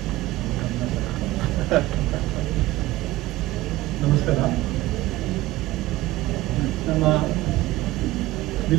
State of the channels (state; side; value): quieter; left; 17.5 dB